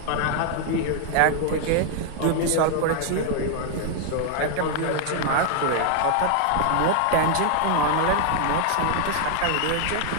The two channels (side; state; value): both; different; correlation 0.00